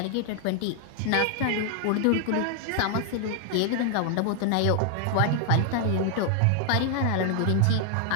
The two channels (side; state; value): both; different; correlation 0.00